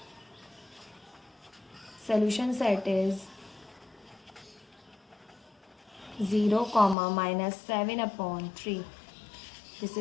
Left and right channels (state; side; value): drops out; right; at 7.0 s